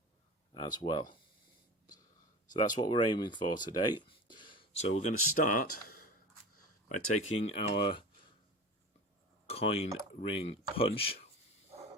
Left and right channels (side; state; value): both; normal; correlation 0.33